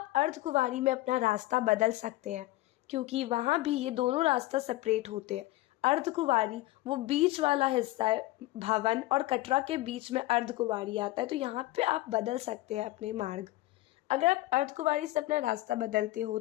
अर्धकुंवारी में अपना रास्ता बदल सकते हैं क्योंकि वहाँ भी ये दोनों रास्ता सेपरेट होते हैं। अर्धकुंवारी वो बीच वाला हिस्सा है, भवन और कटरा के बीच में अर्धकुंवारी आता है, तो यहाँ पे आप बदल सकते हैं अपने मार्ग। अगर आप अर्धकुंवारी से अपना रास्ता बदलते हो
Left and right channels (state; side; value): quieter; right; 18.0 dB